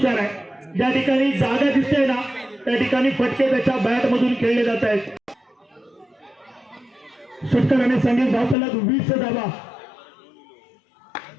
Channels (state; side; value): drops out; right; at 8.6 s